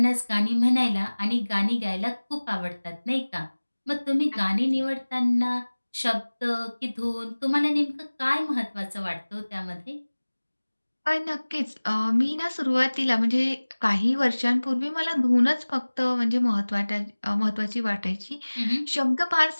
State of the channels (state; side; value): inverted; both; correlation -1.00